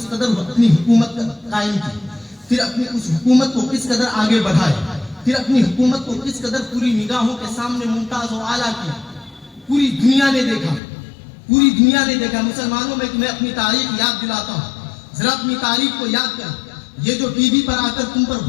قدر اپنی حکومت قائم کی, پھر اپنی اس حکومت کو کس قدر آگے بڑھائے, پھر اپنی حکومت کو کس قدر پوری نگاہوں کے سامنے ممتاز و اعلیٰ کیا. پوری دنیا نے دیکھا, پوری دنیا نے دیکھا. مسلمانوں میں تمہیں اپنی تاریخ یاد دلاتا ہوں, ذرا اپنی تاریخ کو یاد کر. یہ جو ٹی وی پر آ کر تم پر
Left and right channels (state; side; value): drops out; right; at 10.8 s